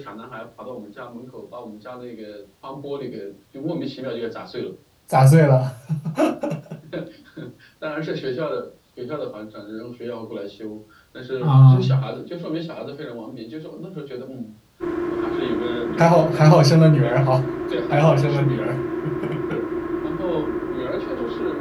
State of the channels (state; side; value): identical; both; correlation 1.00